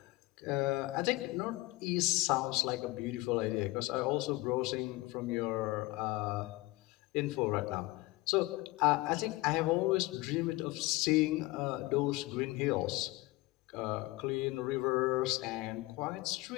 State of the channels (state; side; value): quieter; right; 21.1 dB